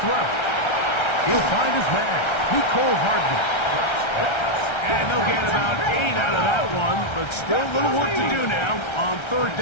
throw. He'll find his man, Nicole Hardman. And they'll get about 8 out of that one, but still a little work to do now on 3rd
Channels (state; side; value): late; right; 1.3 ms